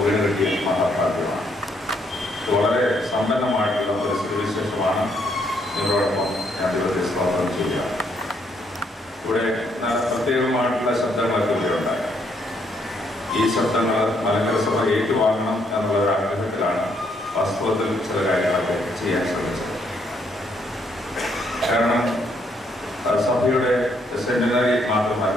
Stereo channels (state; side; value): normal; both; correlation 0.72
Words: വീട് കിട്ടിയ മഹാഭാഗ്യമാണ്. വളരെ സമ്പന്നമായിട്ടുള്ള ഒരു സ്ഥിതിവിശേഷമാണ് നിങ്ങളോടൊപ്പം ഞാൻ ദൈവത്തെ സ്തോത്രം ചെയ്യുക. ഇവിടെ പ്രത്യേകമായിട്ടുള്ള ശബ്ദങ്ങളൊക്കെ ഇവിടെ ഉണ്ടാകാം. ഈ ശബ്ദങ്ങൾ മലങ്കര സഭ ഏറ്റുവാങ്ങണം എന്നുള്ള ഒരു ആഗ്രഹത്തിലാണ് വാസ്തവത്തിൽ ചില കാര്യങ്ങളൊക്കെ ചെയ്യാൻ ശ്രമിച്ചത്. കാരണം സഭയുടെ സെമിനാരി